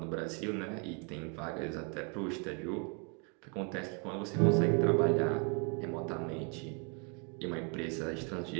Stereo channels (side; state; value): left; quieter; 35.3 dB